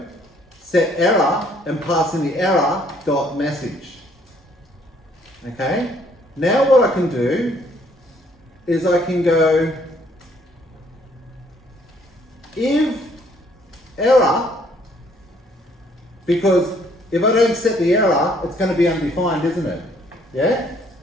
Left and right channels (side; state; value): both; normal; correlation 0.64